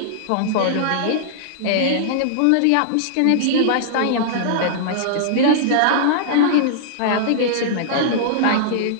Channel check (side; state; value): both; different; correlation -0.02